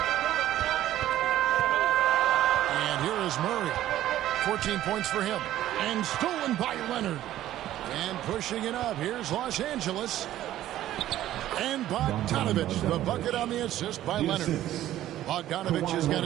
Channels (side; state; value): left; quieter; 13.3 dB